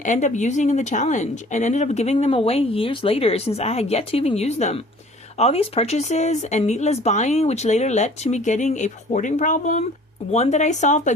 end up using in the challenge and ended up giving them away years later since I had yet to even use them. All these purchases and needless buying, which later led to me getting a hoarding problem, one that I solved by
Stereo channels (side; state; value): both; normal; correlation 0.50